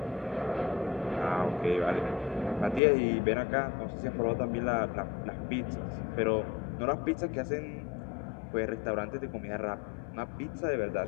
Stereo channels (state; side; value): drops out; right; at 2.8 s